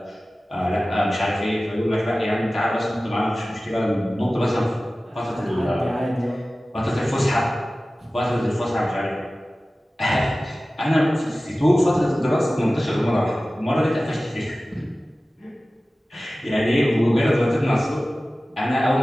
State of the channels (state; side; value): normal; both; correlation 0.96